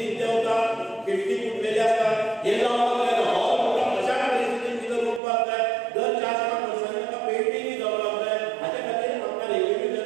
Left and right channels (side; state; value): left; drops out; at 5.2 s